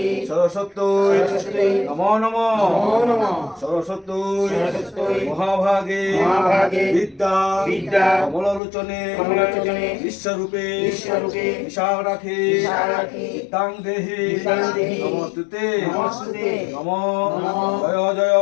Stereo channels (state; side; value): drops out; right; at 8.6 s